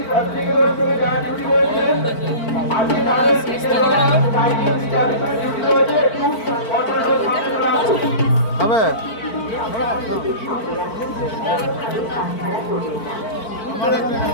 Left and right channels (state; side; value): late; right; 4.5 ms